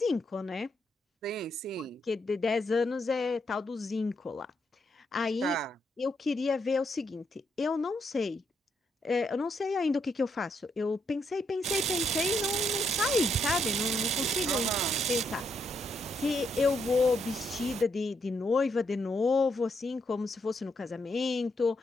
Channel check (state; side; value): normal; both; correlation 0.77